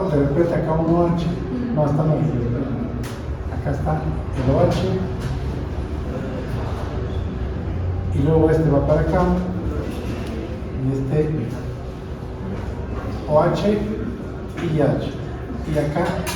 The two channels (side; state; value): both; identical; correlation 1.00